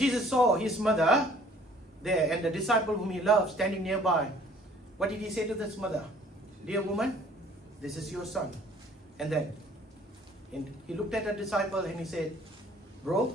Jesus saw his mother there and the disciple whom he loved standing nearby, what did he say to this mother? Dear woman, this is your son. And then he looked at the disciple and he said, bro,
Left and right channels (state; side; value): normal; both; correlation 0.55